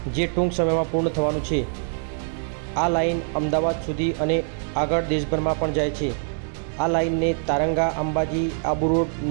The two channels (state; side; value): silent; left; 57 dB below the other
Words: જે ટૂંક સમયમાં પૂર્ણ થવાનું છે। આ લાઇન અમદાવાદ સુધી અને આગળ દેશભરમાં પણ જાય છે। આ લાઇનને તારંગા અંબાજી આબુ રોડ